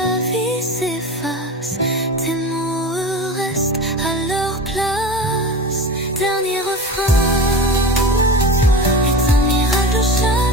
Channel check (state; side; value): normal; both; correlation 0.30